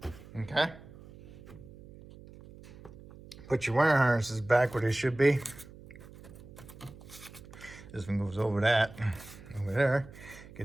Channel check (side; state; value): right; noise; hum, 18 dB below the sound